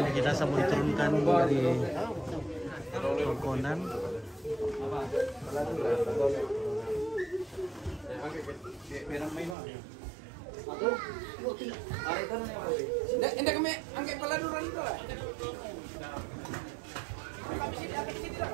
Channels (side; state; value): left; drops out; at 9.6 s